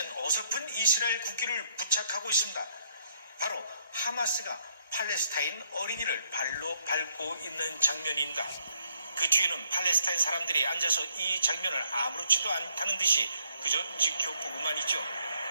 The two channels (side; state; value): both; inverted; correlation -0.71